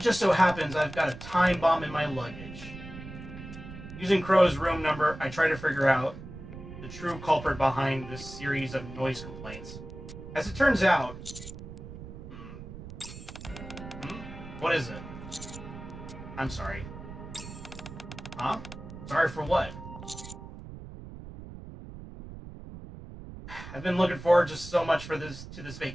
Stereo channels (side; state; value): right; noise; rumble, 12 dB below the sound